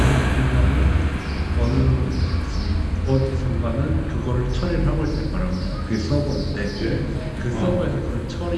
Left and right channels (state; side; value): identical; both; correlation 1.00